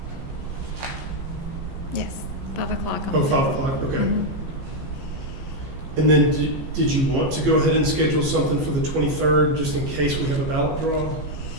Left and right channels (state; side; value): late; left; 15 ms